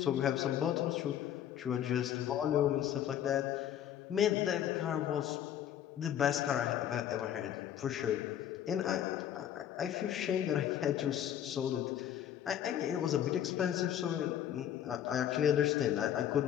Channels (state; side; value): quieter; right; 10.4 dB